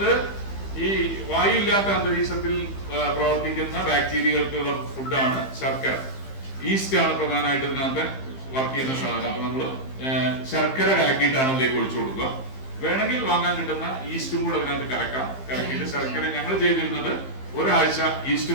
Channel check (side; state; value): right; late; 15 ms